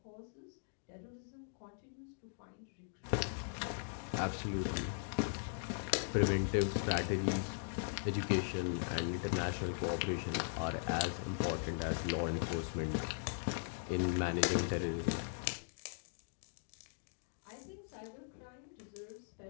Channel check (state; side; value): silent; right; digital silence